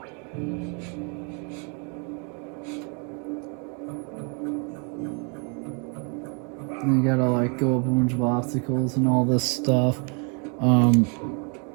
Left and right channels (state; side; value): quieter; left; 36.4 dB